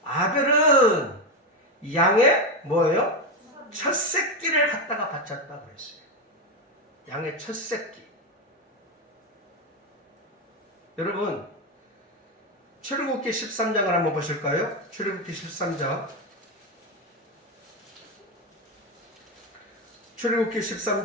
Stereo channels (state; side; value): normal; both; correlation 0.11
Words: 아벨은 양의 뭐예요? 첫 새끼를 갖다가 바쳤다고 했어요. 양의 첫 새끼. 여러분, 출애굽기 13장을 한번 보실까요? 출애굽기 13장. 출애굽기